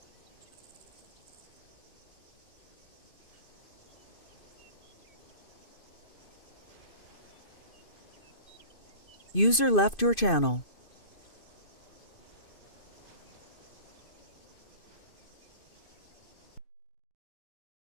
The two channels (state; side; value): late; right; 2.5 ms